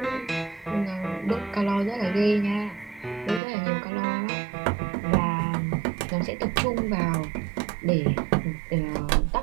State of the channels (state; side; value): drops out; left; at 3.4 s